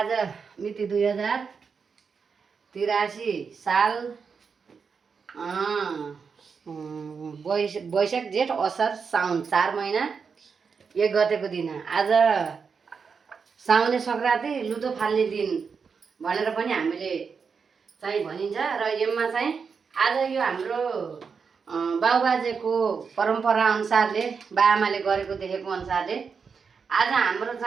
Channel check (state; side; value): quieter; left; 5.7 dB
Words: मिति 2083 साल वैशाख जेठ असार साउन 4 महिना 1 गतेको दिन आज साउने सङ्क्रान्ति लुतो फाल्ने दिन भनेर पनि हामीले चाहिँ भनिन्छ र यसमा चाहिँ आज यो हाम्रो बाउबाजेको परम्परा अनुसारले बाआमाले गरेको देखेको अनुसारले आज हाम्रो